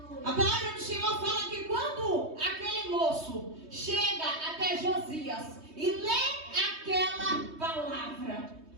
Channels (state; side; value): late; left; 3.2 ms